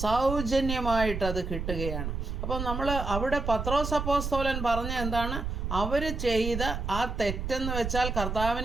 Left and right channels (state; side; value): noise; right; rumble, 4 dB below the sound